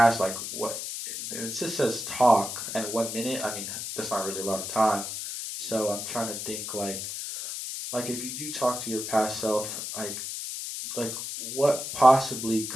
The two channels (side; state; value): left; noise; hiss, 6 dB below the sound